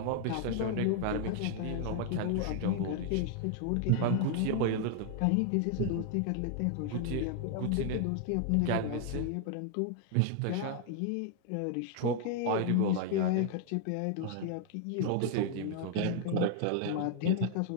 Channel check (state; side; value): different; both; correlation 0.00